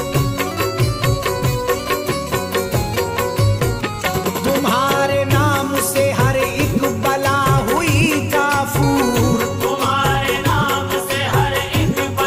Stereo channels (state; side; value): identical; both; correlation 1.00